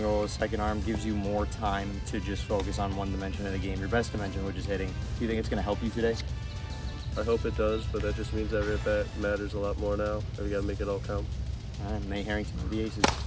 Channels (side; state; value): both; identical; correlation 1.00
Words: as second arm gives you more time to just focus on one dimension of the game, your best dimension, which is hitting. Do you think it's going to help you today? I hope it does, but that just means every at-bat matters a lot more now, and we gotta make it all count. All right, Nate Harrington of the Aces.